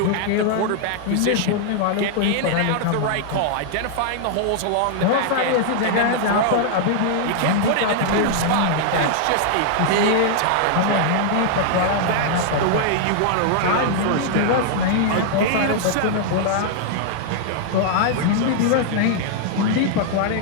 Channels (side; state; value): both; different; correlation -0.01